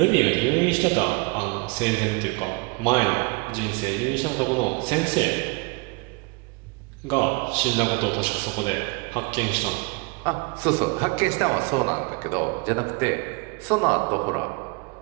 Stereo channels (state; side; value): quieter; left; 28.3 dB